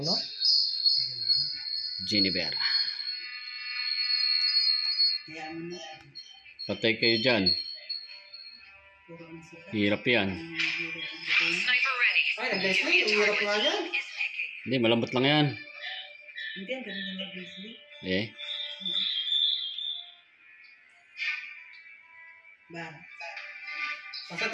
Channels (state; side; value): identical; both; correlation 1.00